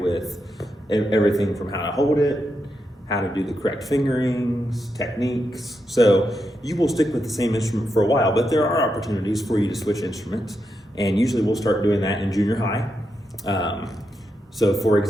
everything from how to hold it, how to do the correct fingerings, techniques. So you will stick with the same instrument for a while, but there are opportunities for you to switch instruments, and usually we'll start doing that in junior high. So for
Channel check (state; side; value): normal; both; correlation 0.85